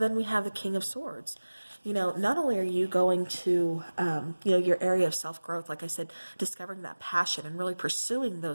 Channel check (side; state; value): both; inverted; correlation -1.00